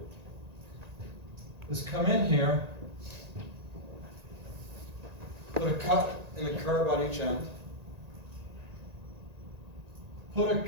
is come in here, put a cut and a curb on each end, put a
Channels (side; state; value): left; late; 1.9 ms